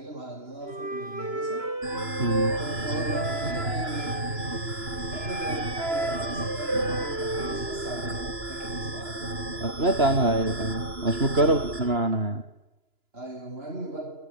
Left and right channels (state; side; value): late; left; 2.9 ms